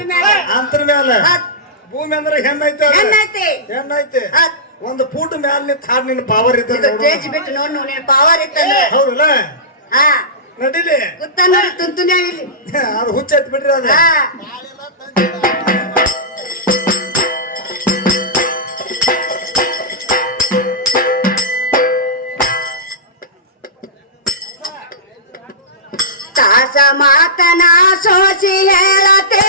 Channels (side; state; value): both; normal; correlation -0.18